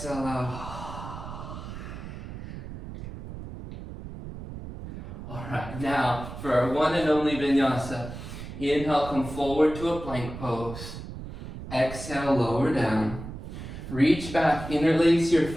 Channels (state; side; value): noise; right; rumble, 10 dB below the sound